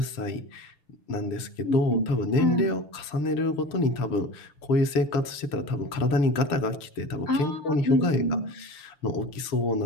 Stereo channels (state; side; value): late; right; 6.7 ms